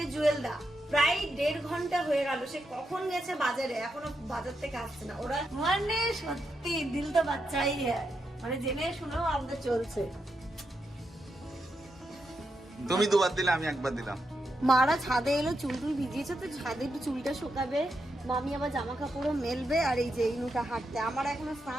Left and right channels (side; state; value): both; normal; correlation 0.84